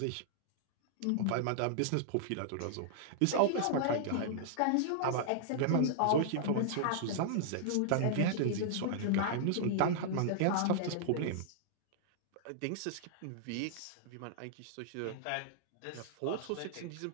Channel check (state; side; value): different; both; correlation -0.01